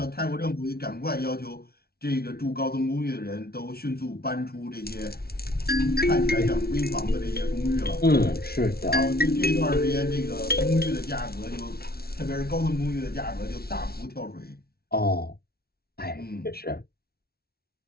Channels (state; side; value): late; right; 0.45 ms